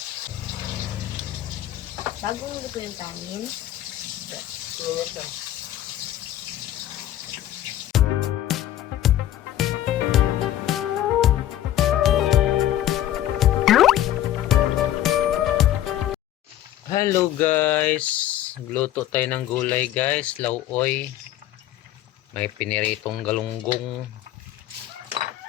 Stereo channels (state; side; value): quieter; right; 12.7 dB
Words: Bagong luto yung kanin. Minute lang. Hello guys. Gluto tayo ng gulay guys. Lauoy. May piniritong galunggong.